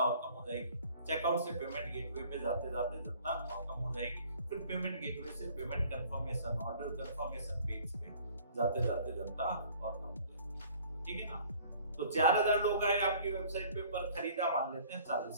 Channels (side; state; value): both; inverted; correlation -0.53